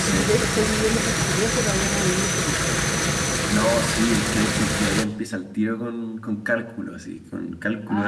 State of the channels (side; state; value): both; identical; correlation 1.00